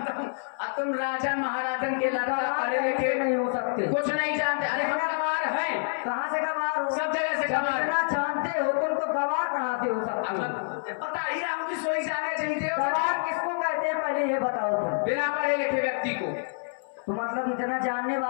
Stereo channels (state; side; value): silent; right; 60 dB below the other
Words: हूँ, अब तुम राजा महाराजन के लड़का पढ़े लिखे नहीं हो सकते, कुछ नहीं जानते। अरे हम गंवार हैं। कहाँ से गंवार हो? सब जगह से गंवार। जानते हो तुमको गंवार कहाँ से हो सकते? पता ही रहा हूँ कि सोई जाने चाहिए। गंवार किसको कहते हैं पहले ये बताओ तुम? बिना पढ़े लिखे व्यक्ति को। तो मतलब इतना जानने